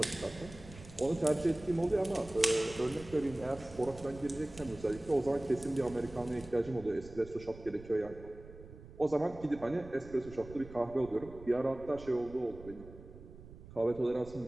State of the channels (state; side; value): noise; right; rumble, 17 dB below the sound